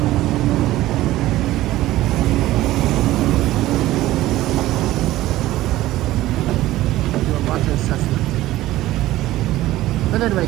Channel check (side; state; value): left; quieter; 16.0 dB